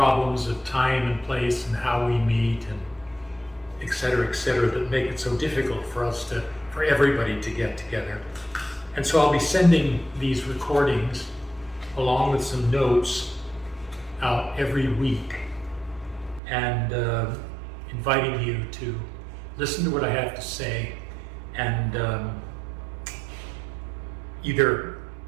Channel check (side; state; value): left; drops out; at 16.4 s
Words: of time and place and how we meet and et cetera, that make it so difficult for everybody to get together. And so I'll be sending these recordings along with some notes out every week and inviting you to listen to what I have to say and either